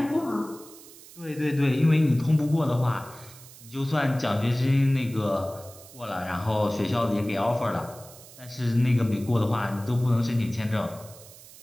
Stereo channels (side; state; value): right; noise; hiss, 20 dB below the sound